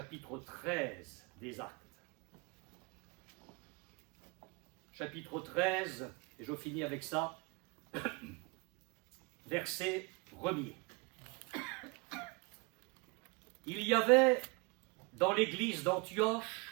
13 des Actes. Chapitre 13, et je finis avec ça, verset 1er. Il y avait dans l'église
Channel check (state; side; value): quieter; left; 28.5 dB